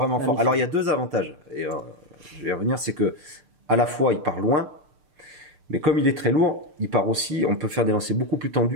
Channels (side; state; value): left; late; 6.7 ms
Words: fort. Alors, il y a deux avantages. Et je vais y revenir, c'est que à la fois, il part loin, mais comme il est très lourd, il part aussi. On peut faire des lancers beaucoup plus